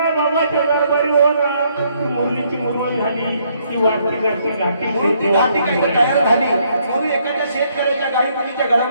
बाबाच्या दरबारी होणार. मुरलीची मुरमली झाली. ती वाटती घाटी म्हणून ती घाटी काही तयार झाली. म्हणून एखाद्या शेतकऱ्याच्या गाई तिच्या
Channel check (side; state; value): both; inverted; correlation -0.70